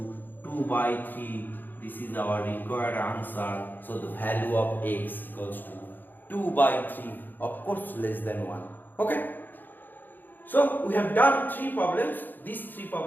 2 by 3. This is our required answer. So the value of x equals to 2 by 3, of course less than 1. Okay. So we have done 3 problems. These 3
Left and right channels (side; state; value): right; late; 0.089 ms